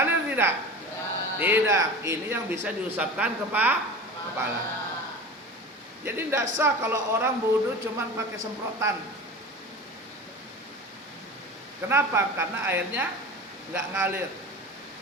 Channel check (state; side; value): normal; both; correlation 0.33